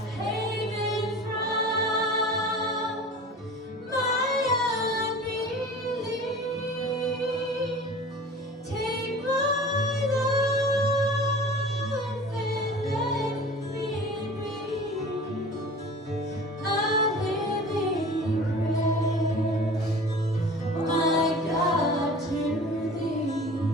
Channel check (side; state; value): both; normal; correlation 0.40